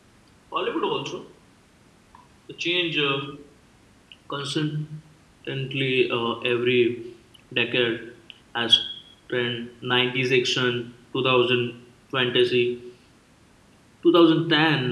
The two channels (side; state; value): both; identical; correlation 1.00